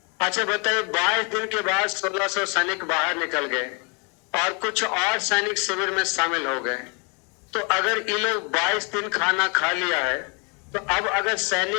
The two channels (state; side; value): quieter; right; 33.8 dB